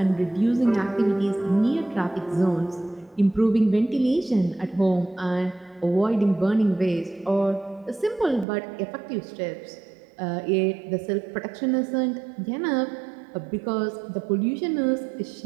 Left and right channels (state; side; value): drops out; left; at 8.5 s